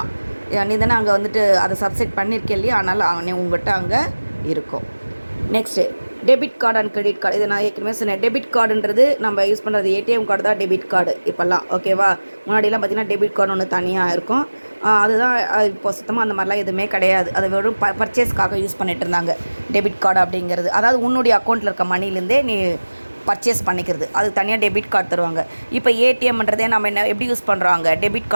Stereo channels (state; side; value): inverted; both; correlation -1.00